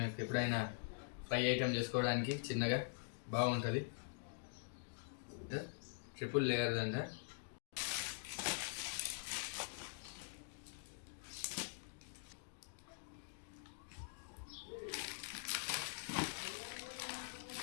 ఎప్పుడైనా ఫ్రై ఐటమ్ చేసుకోవడానికి చిన్నగా బాగుంటుంది. ట్రిపుల్ లేయర్ అంట.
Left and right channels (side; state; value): right; silent; digital silence